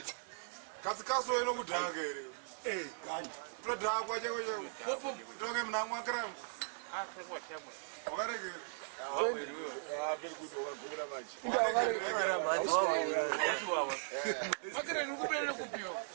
Kazi ino kudhaka ere. Gani. Todhakwa chako chako. Toke mnamwa kram. Wakareke. Very good wakagura machi. Makere nikupelele kupiwa.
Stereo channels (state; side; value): silent; left; 52 dB below the other